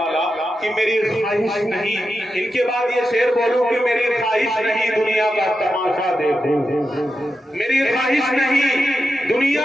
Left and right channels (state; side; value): normal; both; correlation 0.89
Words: कि मेरी ख्वाहिश नहीं, इनके बाद ये शेर बोलूं कि मेरी ख्वाहिश नहीं दुनिया का तमाशा देखूं, मेरी ख्वाहिश नहीं दुनिया